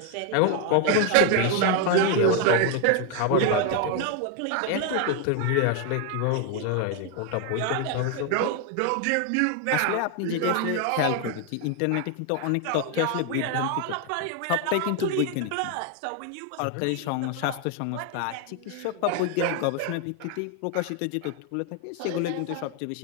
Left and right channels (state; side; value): different; both; correlation 0.01